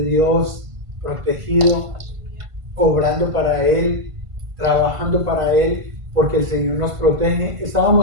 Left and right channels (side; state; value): left; late; 1.5 ms